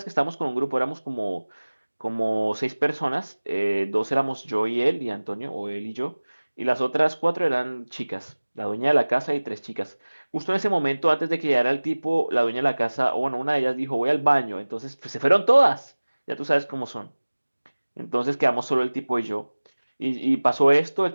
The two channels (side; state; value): both; inverted; correlation -1.00